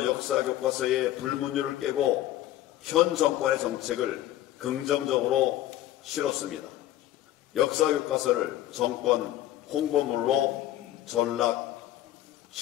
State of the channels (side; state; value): right; quieter; 13.7 dB